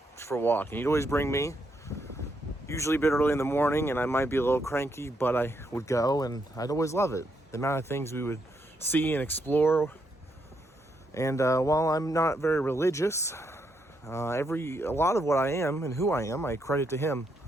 for a walk. And he'd always bring me, usually a bit early in the morning, and I might be a little cranky, but I would go, and I'd always love it. The amount of things we would see and explore. And while I'm not very religious, a lot of what I am and who I am, I credit to him.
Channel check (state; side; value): normal; both; correlation 0.78